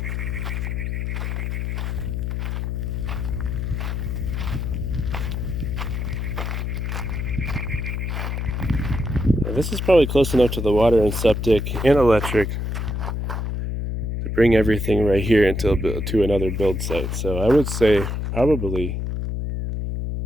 this is probably close enough to the water and septic and electric to bring everything right here into to another build site. So I would say probably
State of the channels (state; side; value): noise; left; hum, 2 dB below the sound